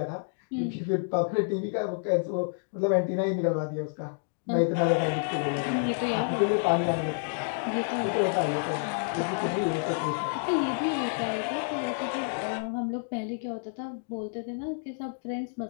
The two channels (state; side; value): silent; right; digital silence